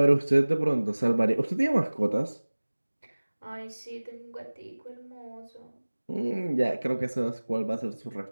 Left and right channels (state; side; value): inverted; both; correlation -1.00